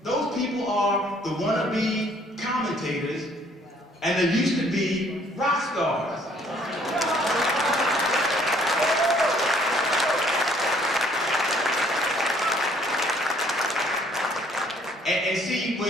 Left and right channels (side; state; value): both; normal; correlation 0.62